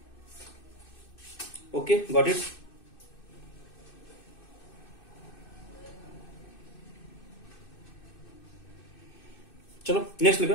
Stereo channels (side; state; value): right; late; 2.6 ms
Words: Okay, got it. चलो नेक्स्ट लिखो.